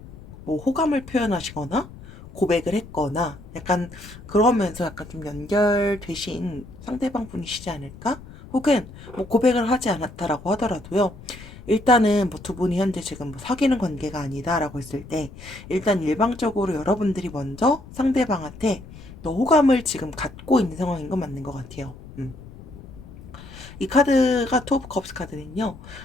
뭐 호감을 표현하시거나 고백을 했거나 약간 그러면서 약간 좀 연결되신 상대방 분이시지 않을까? 혹은 뭐 고백을 하지 않았다라고 하더라도요. 일단은 뭐 두 분이 현재 지금 뭐 사귀는 관계가 아니다라고 했을 때 일단 일방적으로 여러분들이 먼저 상대방한테 더 호감을 지금 갖고 있는 상황인 건 맞는 것 같아요. 이 카드가 투 오브 컵스 카드는요.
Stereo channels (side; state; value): left; noise; rumble, 17 dB below the sound